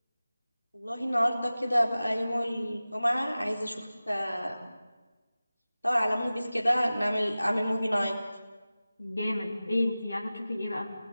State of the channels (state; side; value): inverted; both; correlation -0.97